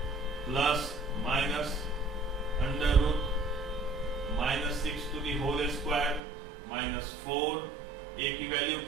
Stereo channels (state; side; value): drops out; left; at 6.2 s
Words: plus minus under root -6 to the whole square -4। a की वैल्यू